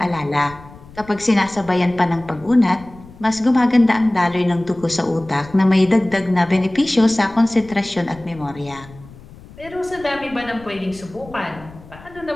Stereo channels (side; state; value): left; noise; rumble, 20 dB below the sound